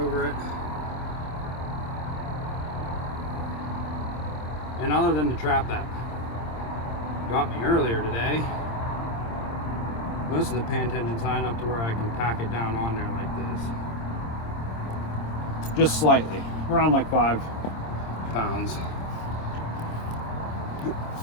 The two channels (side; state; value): right; late; 26 ms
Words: it. And other than the trap that got me earlier today, most of the pan tension's high enough to where I can pack it down on there like this. Just slightly, around like 5 pounds.